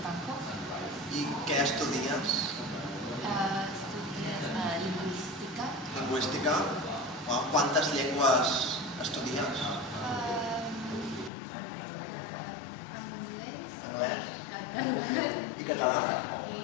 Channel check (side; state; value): right; drops out; at 11.3 s